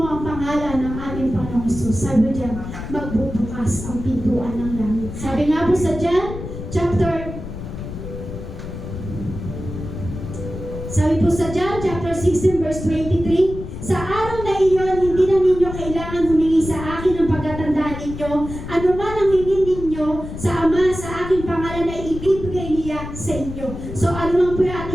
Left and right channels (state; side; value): noise; left; rumble, 9 dB below the sound